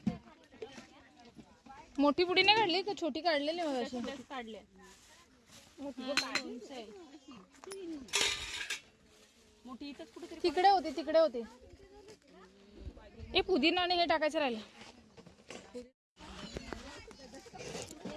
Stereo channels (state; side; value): identical; both; correlation 1.00